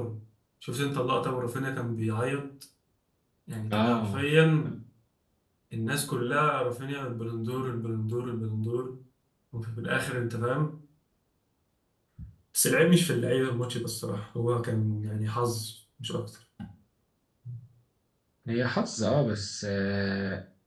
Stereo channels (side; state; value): both; identical; correlation 1.00